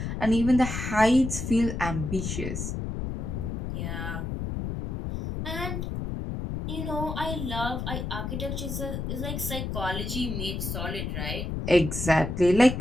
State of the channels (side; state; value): left; noise; rumble, 4 dB below the sound